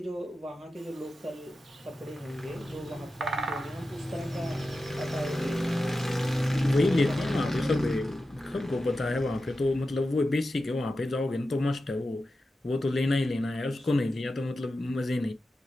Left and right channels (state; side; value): normal; both; correlation 0.92